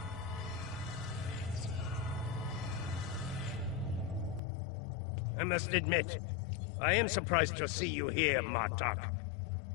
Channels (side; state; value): right; drops out; at 4.4 s